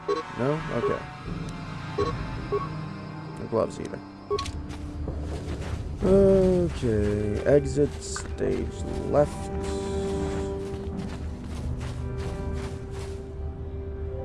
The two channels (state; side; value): identical; both; correlation 1.00